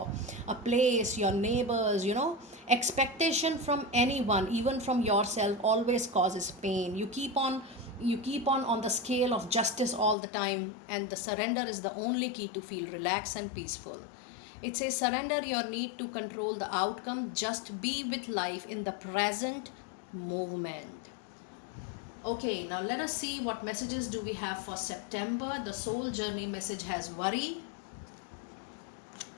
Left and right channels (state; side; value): drops out; right; at 10.2 s